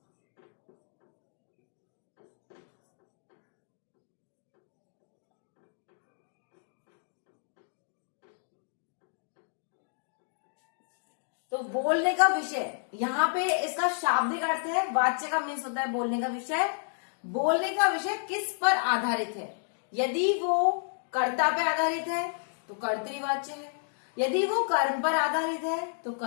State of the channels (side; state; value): right; silent; digital silence